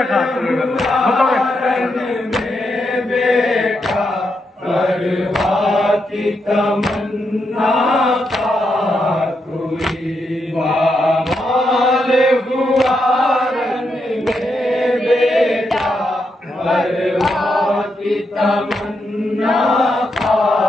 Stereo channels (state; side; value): normal; both; correlation 0.82